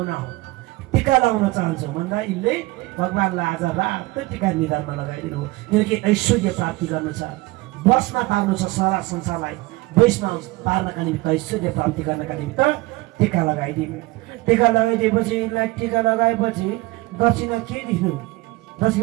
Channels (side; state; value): left; quieter; 21.3 dB